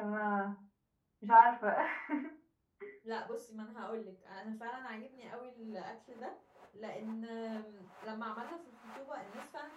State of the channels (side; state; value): both; identical; correlation 1.00